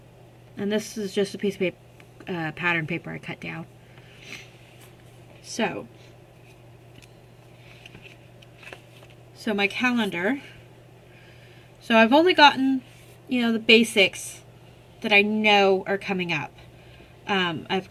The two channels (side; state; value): both; identical; correlation 1.00